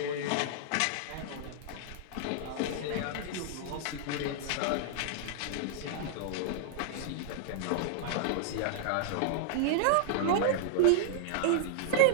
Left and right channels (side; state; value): both; different; correlation -0.01